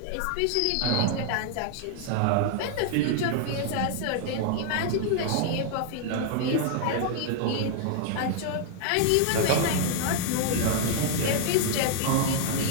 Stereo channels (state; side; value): different; both; correlation 0.00